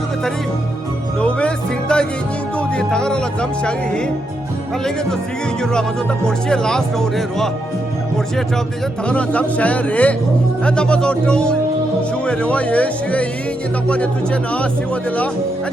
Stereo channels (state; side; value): normal; both; correlation 0.81